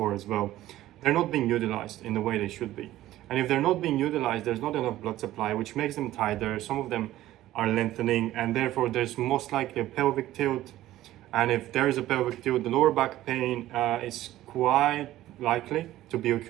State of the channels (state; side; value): quieter; left; 14.7 dB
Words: as well, they're not being utilized in the way they should be. And if they're not being utilized, there's not enough blood supply, which makes them tighter. Some of them are lengthening, and therefore there's most likely a pelvic tilt. And if there is a pelvic tilt, the lower back pain is quite likely to be